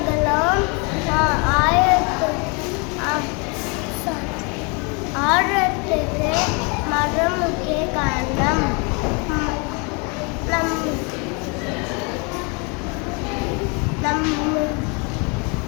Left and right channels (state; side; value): quieter; right; 32.3 dB